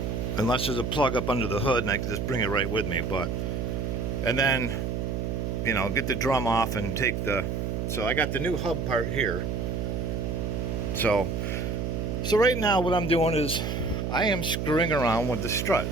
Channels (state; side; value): noise; right; hum, 2 dB below the sound